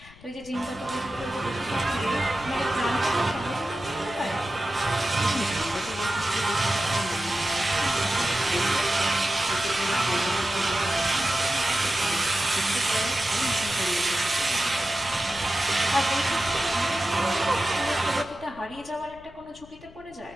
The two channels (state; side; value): noise; left; rumble, 22 dB below the sound